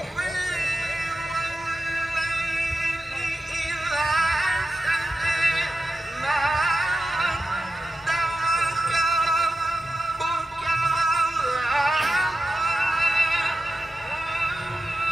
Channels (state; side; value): normal; both; correlation 0.91